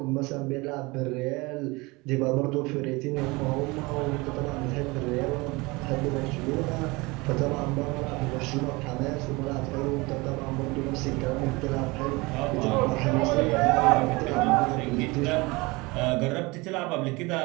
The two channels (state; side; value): quieter; left; 24.2 dB